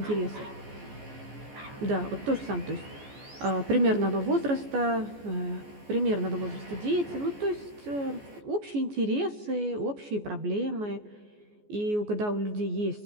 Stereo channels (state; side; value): late; left; 14 ms